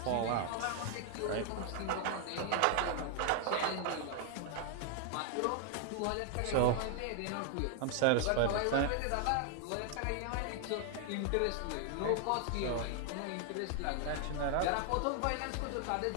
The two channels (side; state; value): both; different; correlation 0.00